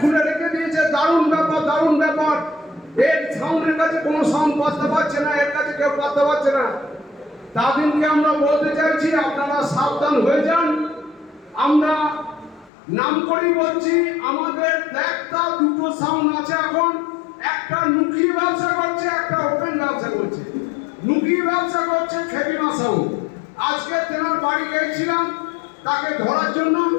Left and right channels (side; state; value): right; drops out; at 12.7 s